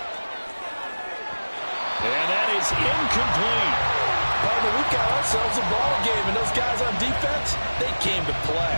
And that is incomplete. Partner, we've got ourselves a ball game, and those guys on defense, they came to play.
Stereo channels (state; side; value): inverted; both; correlation -1.00